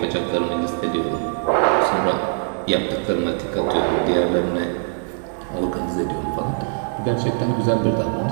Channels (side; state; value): left; silent; digital silence